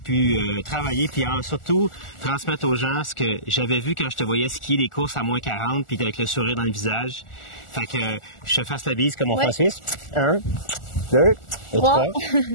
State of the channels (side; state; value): right; late; 1.4 ms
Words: travailler, puis surtout transmettre aux gens ce que j'avais vu quand je te voyais skier des courses à moins 40, puis avec le sourire dans le visage. Fait que je te fasse la bise comme on fait en Suisse. 1, 2 et 3.